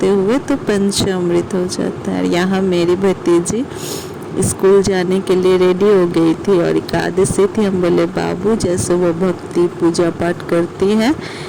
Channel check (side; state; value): both; identical; correlation 1.00